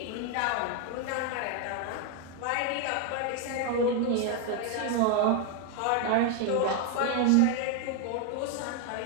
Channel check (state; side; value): different; both; correlation 0.01